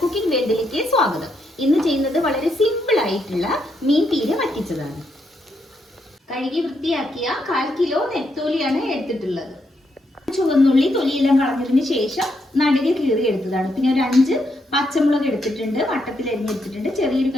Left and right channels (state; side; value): normal; both; correlation 0.79